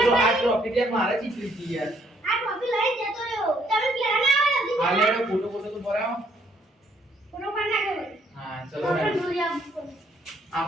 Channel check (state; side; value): normal; both; correlation 0.68